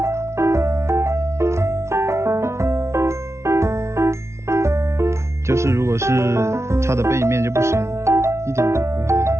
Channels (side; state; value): left; late; 0.13 ms